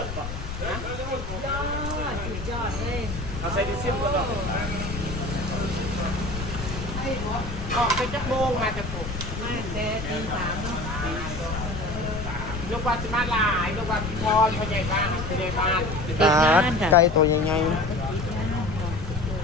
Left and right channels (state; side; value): noise; left; rumble, 7 dB below the sound